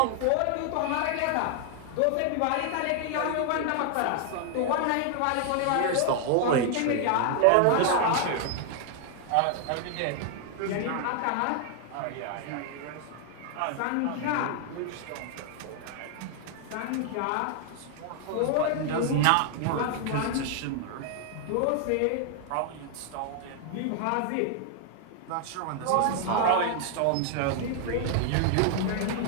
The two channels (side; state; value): both; different; correlation 0.00